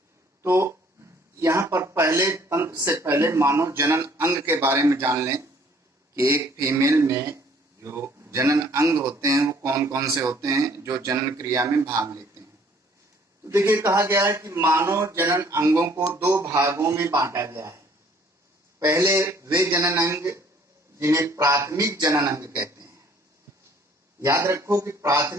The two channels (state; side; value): normal; both; correlation 0.59